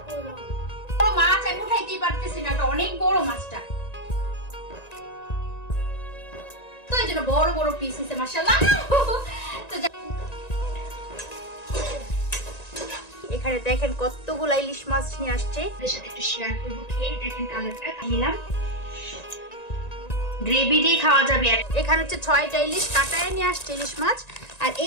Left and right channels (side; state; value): right; late; 1.9 ms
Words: করো। বড় মাছ আমি উঠাইতেই পারতেছি না, অনেক বড় মাছটা, তো এই জন্য বড় বড় পিস হয়েছে মাশাআল্লাহ। তো এখানে দেখেন কতগুলো ইলিশ মাছ নিয়ে আসছে, এর সাথে একটু শেয়ার করব। খেয়ে দেখেন কালারটা নিলাম, গ্রেভি দিয়ে খাওয়া যাবে। এখানে হচ্ছে 6টা ইলিশ কাটায় নিয়ে আসছে ইলিশ মাছ। আর